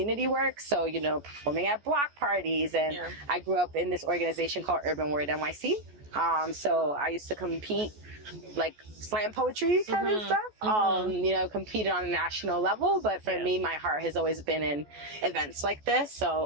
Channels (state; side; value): late; left; 14 ms